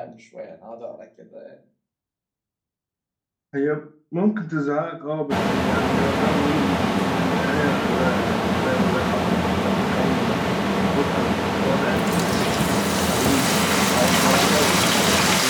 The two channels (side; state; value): both; identical; correlation 1.00